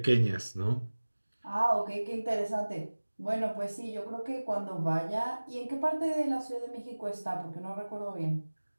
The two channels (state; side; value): inverted; both; correlation -1.00